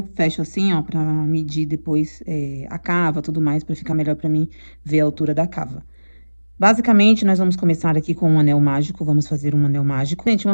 fecho assim, ó, pra medir depois a cava, tudo mais, pra ficar melhor pra mim ver a altura da cava. Basicamente, nós vamos começar aqui com um anel mágico, vamos fazer um anel mágico. Gente, um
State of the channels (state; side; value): inverted; both; correlation -1.00